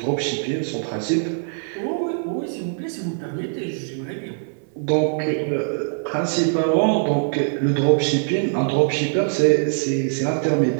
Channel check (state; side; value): silent; left; 64 dB below the other